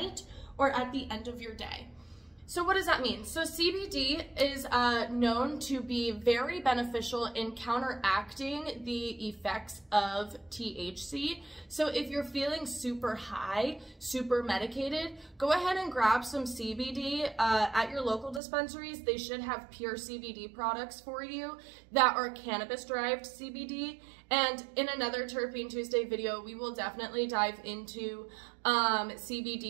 or at the end of your day. So what does that mean? So CBD is known to be very beneficial in counteracting the effects of THC. So if you're feeling super high, super medicated, go ahead and grab some CBD at your local dispensaries. They should have pure CBD products for you that are cannabis-derived CBD. And in another Terpene Tuesday video, we will definitely dive into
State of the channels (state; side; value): drops out; left; at 18.4 s